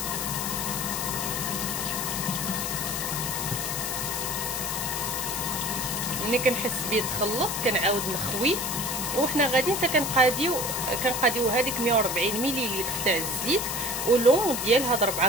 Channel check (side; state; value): left; noise; hiss, 3 dB below the sound